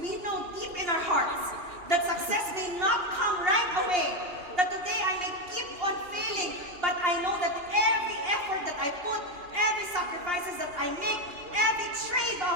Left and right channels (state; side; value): late; left; 2.8 ms